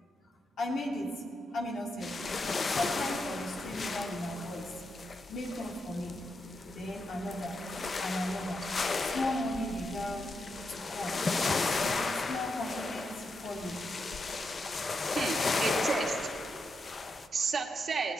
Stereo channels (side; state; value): both; normal; correlation 0.84